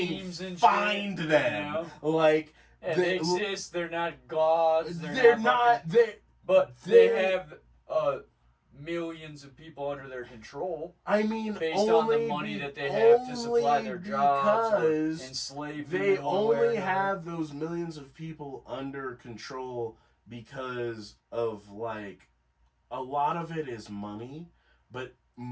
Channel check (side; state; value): both; identical; correlation 1.00